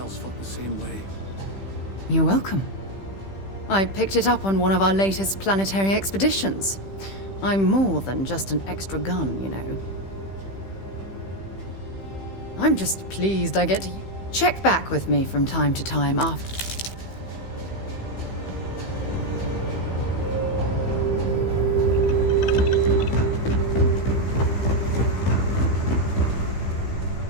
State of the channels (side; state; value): right; late; 15 ms